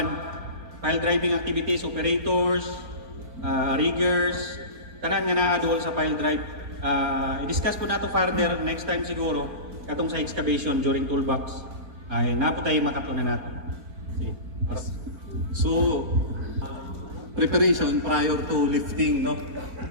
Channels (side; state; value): left; late; 4.3 ms